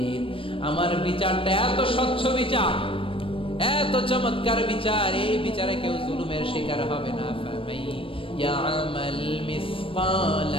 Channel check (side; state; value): right; late; 0.26 ms